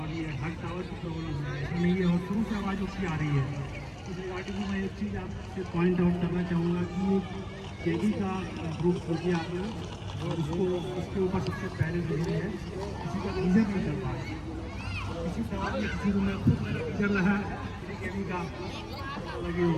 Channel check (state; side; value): identical; both; correlation 1.00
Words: ये हर टावर की प्रॉब्लम है। ऐसा नहीं है, और शुरू से आवाज़ उसकी आ रही है। इस रिगार्डिंग में मैं एक चीज़ आपसे पॉइंट आउट करना चाहूँगा कि केगी का ग्रुप खोलिए आपने, और उसके ऊपर सबसे पहले जो है किसी का रीजन नहीं कर पा रहे, किसी सवाल में किसी को मैं खुद कर रहा है केगी का लगे